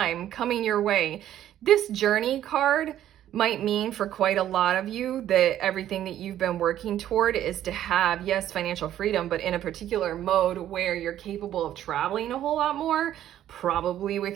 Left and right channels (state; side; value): quieter; left; 11.8 dB